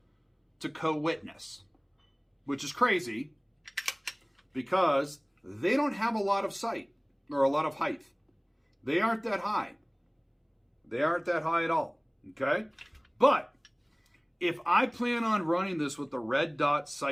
to co-witness, which is crazy because they don't have a lot of sight or a lot of height. They aren't that high. They aren't that high at all, okay? But if I plan on running this with the red dot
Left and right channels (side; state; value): both; identical; correlation 1.00